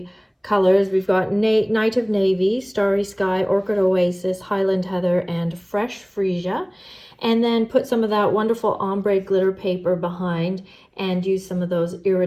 colors. We've got Night of Navy, Starry Sky, Orchid Oasis, Highland Heather, and Fresh Freesia. And then put some of that wonderful ombre glitter paper behind and use some of those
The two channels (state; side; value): identical; both; correlation 1.00